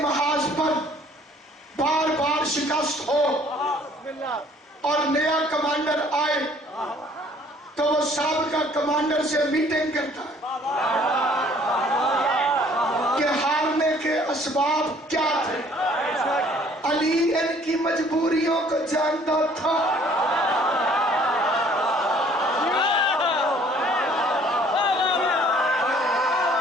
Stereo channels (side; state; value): both; normal; correlation 0.57